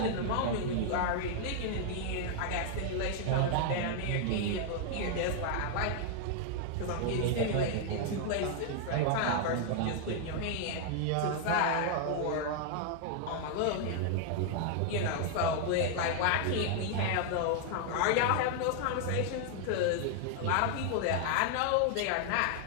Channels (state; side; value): different; both; correlation 0.00